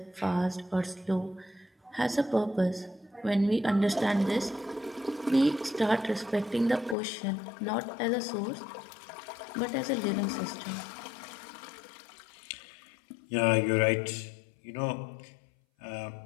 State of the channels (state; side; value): drops out; right; at 7.0 s